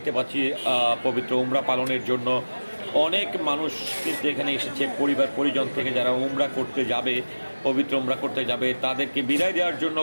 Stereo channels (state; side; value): inverted; both; correlation -1.00